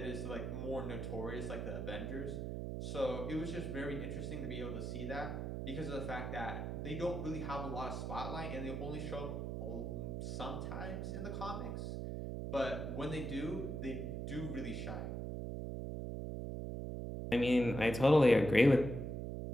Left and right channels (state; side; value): noise; right; hum, 3 dB below the sound